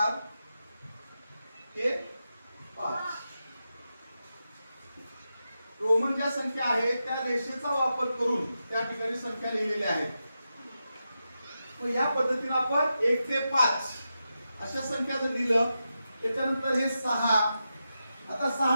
हे 5। रोमन ज्या संख्या आहेत त्या रेषेचा वापर करून त्या ठिकाणी संख्या लिहिलेल्या आहेत। मग या पद्धतीने आपण 1 ते 5 अशा संख्या जर लिहिलं, त्याच्यानंतर हे 6। आता 6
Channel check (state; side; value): inverted; both; correlation -0.89